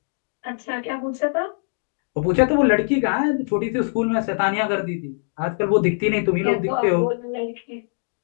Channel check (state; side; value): silent; right; digital silence